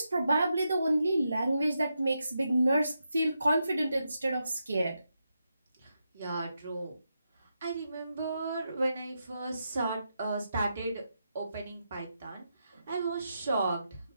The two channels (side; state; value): both; inverted; correlation -0.85